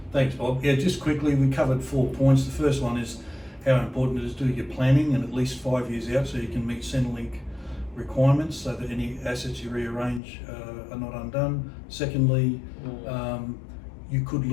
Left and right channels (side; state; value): right; drops out; at 10.2 s